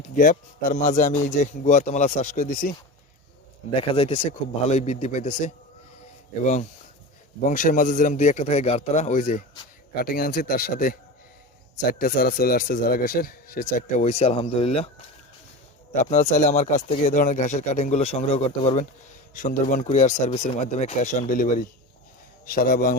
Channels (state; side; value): normal; both; correlation 0.28